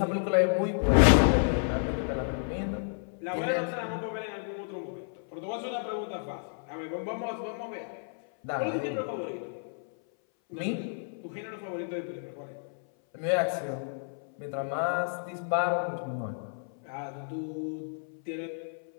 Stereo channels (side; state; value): right; silent; 57 dB below the other